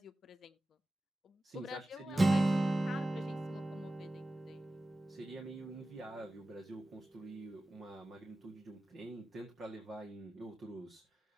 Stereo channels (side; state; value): both; normal; correlation 0.95